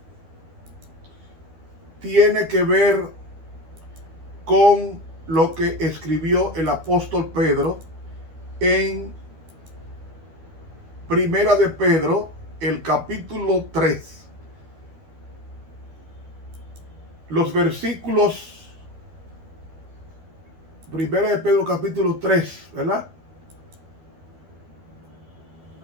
tiene que ver con lo que escribió el apóstol Pedro en Primera de Pedro, el capítulo 3. Los versículos, Primera de Pedro, capítulo 3, ¿verdad?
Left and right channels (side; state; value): left; late; 12 ms